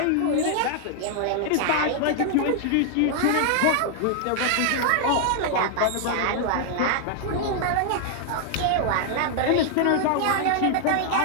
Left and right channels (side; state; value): both; different; correlation 0.00